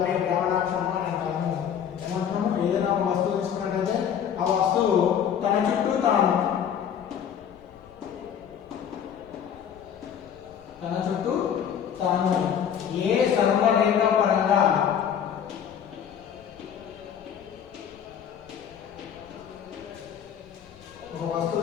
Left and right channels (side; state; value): right; quieter; 8.6 dB